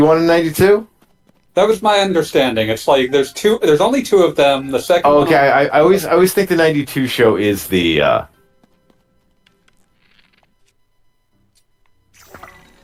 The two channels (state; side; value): identical; both; correlation 1.00